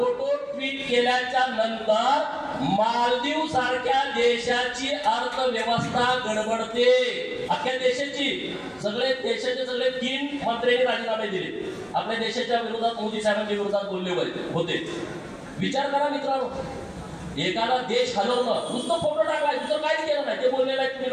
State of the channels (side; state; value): both; identical; correlation 1.00